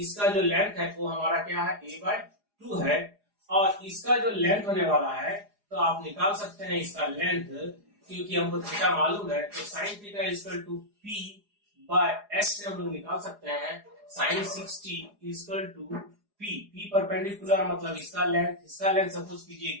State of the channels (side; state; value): left; late; 4.9 ms